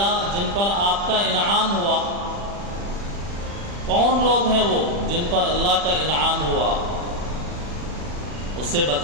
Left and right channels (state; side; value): late; left; 40 ms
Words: جن پر آپ کا انعام ہوا. کون لوگ ہیں وہ جن پر اللہ کا انعام ہوا؟ اسے